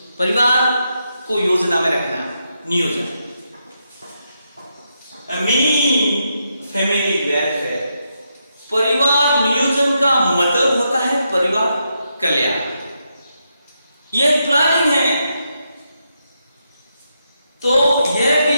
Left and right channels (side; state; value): both; inverted; correlation -0.82